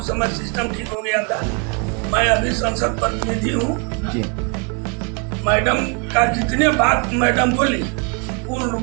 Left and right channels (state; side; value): quieter; left; 34.8 dB